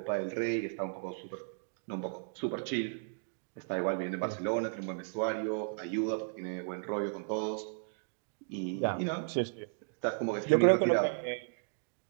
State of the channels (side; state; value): left; silent; digital silence